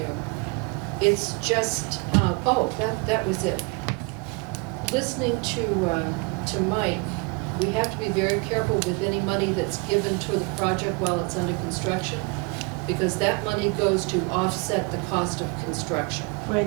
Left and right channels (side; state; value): left; quieter; 28.8 dB